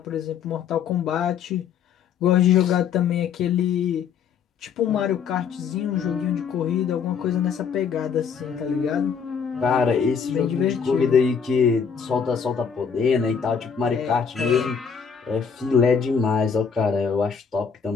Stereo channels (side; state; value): right; quieter; 6.7 dB